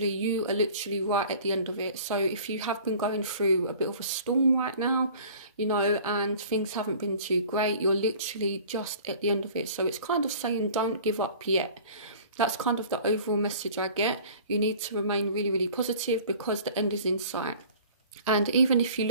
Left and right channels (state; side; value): inverted; both; correlation -0.46